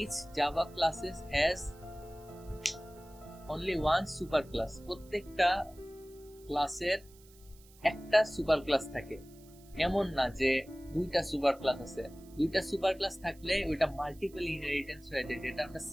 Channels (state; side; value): noise; right; hiss, 26 dB below the sound